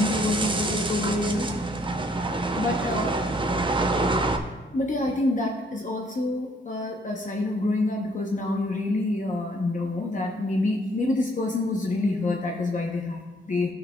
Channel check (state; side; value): normal; both; correlation 0.64